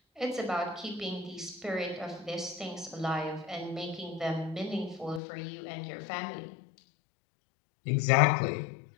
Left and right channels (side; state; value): right; drops out; at 5.2 s